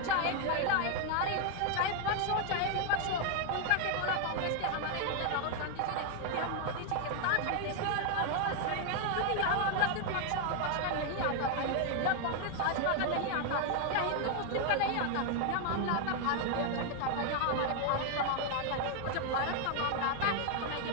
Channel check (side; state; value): both; different; correlation 0.00